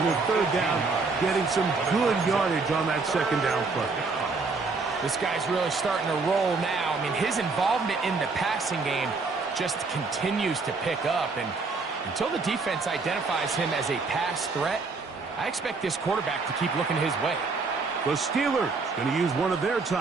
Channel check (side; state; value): left; quieter; 4.2 dB